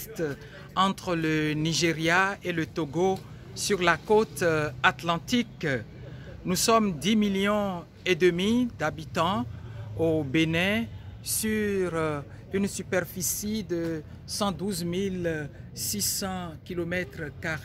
entre le Nigeria et le Togo, sur la côte atlantique. Nous sommes 10,5 millions d'habitants au Bénin, sur une superficie de 112 600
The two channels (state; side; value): identical; both; correlation 1.00